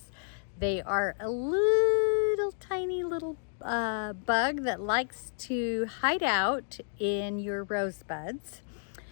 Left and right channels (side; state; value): right; silent; digital silence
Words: they are a little tiny little bug that likes to hide out in your rose buds.